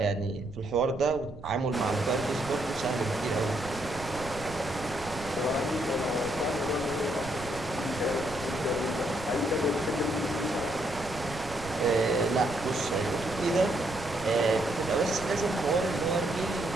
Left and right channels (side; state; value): right; noise; rumble, 14 dB below the sound